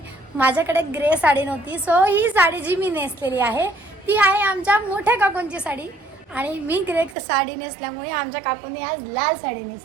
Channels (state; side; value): drops out; left; at 7.2 s